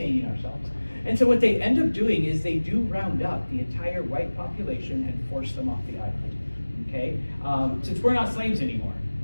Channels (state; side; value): inverted; both; correlation -1.00